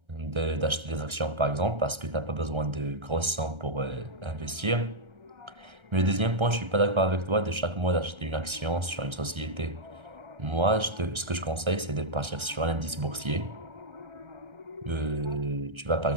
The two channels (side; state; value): left; late; 1.3 ms